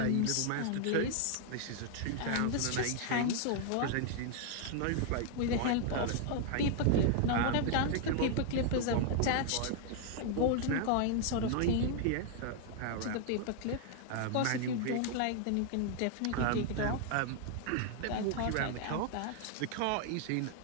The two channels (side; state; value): both; different; correlation 0.00